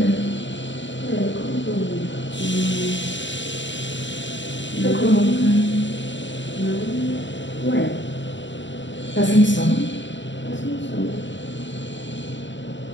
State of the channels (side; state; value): right; late; 0.54 ms